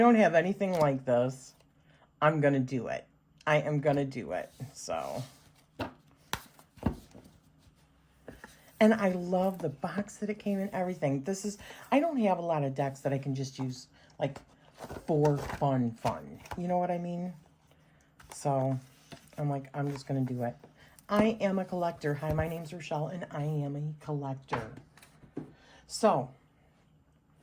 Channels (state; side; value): identical; both; correlation 1.00